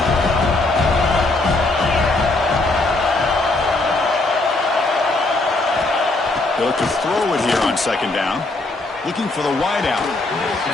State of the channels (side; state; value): right; quieter; 3.0 dB